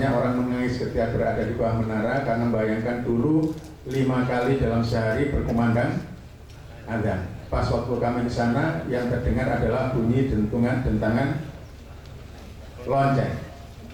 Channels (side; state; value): both; identical; correlation 1.00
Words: orang menangis ketika berada di bawah menara karena membayangkan dulu 5 kali dalam sehari berkumandang azan. Pas waktu kami di sana yang terdengar adalah bunyi dentangan lonceng.